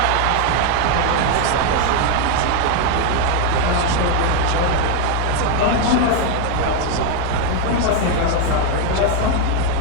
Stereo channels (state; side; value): different; both; correlation 0.01